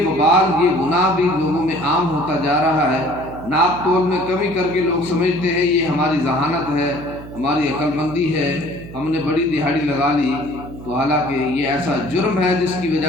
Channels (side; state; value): right; noise; hum, 14 dB below the sound